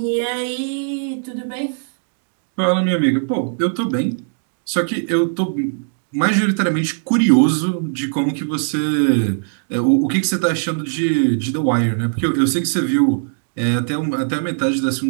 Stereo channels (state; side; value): silent; left; digital silence